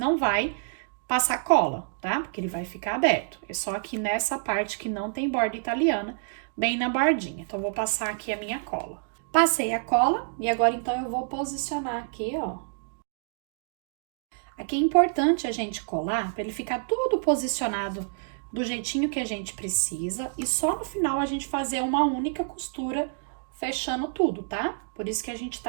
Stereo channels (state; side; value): silent; left; digital silence